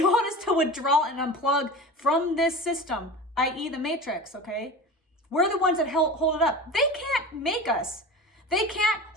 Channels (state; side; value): normal; both; correlation 0.33